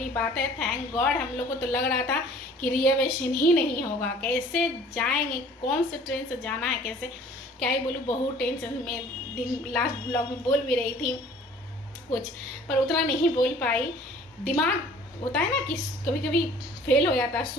बात है, थैंक गॉड। हम लोग को तो लग रहा था कि रिजर्वेशन ही नहीं होगा, कैसे जाएंगे, कौन से ट्रेन से जाना है, कैसे, क्या ही बोलूँ, बहुत टेंशन में। दिन लास्ट ब्लॉग में बोल भी रही थी कुछ, पर उतना नहीं बोल पाई। दिमाग होता है ना कि कभी कभी फेल हो जाता,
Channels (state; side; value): normal; both; correlation 0.51